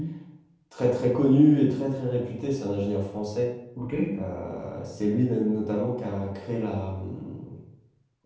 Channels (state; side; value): identical; both; correlation 1.00